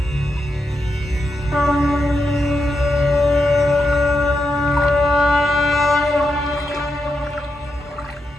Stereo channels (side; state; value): both; normal; correlation 0.85